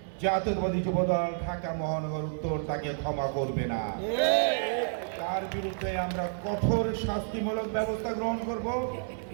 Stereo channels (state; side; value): silent; left; digital silence